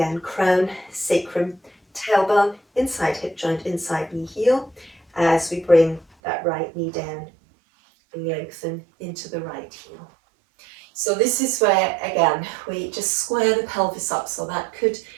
crown, sacrum, tailbone, inside hip joint, inside knee heel, as we bring that right knee down and lengthen into the right heel. So this is where, again, we just square the pelvis up, so that could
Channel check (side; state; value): left; drops out; at 6.1 s